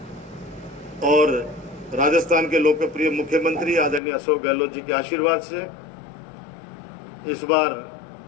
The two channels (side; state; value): right; drops out; at 4.0 s